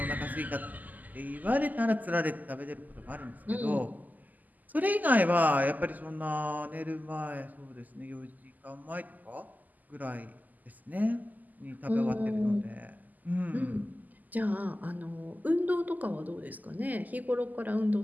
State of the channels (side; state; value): left; late; 0.082 ms